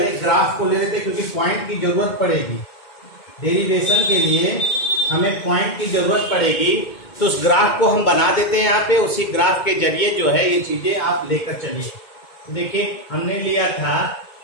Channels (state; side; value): late; right; 2.2 ms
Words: ग्राफ को ले लेते हैं क्योंकि पॉइंट की जरूरत पड़ेगी। डेरिवेशन के लिए हमें पॉइंट की जरूरत पड़ेगी, तो उस ग्राफ को हम बना देते हैं यहाँ पे। उसी ग्राफ के जरिए जो है ये चीजें आप लेकर चलिए। देखिए हमने लिया था